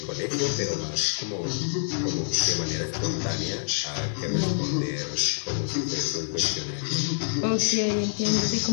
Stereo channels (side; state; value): right; silent; digital silence